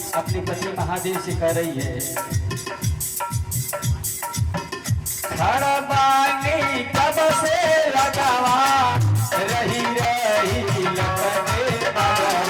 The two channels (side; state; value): both; identical; correlation 1.00